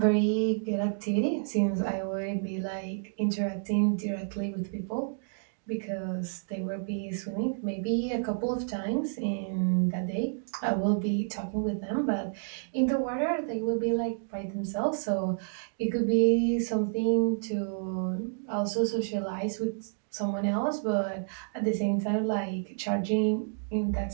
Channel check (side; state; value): left; silent; digital silence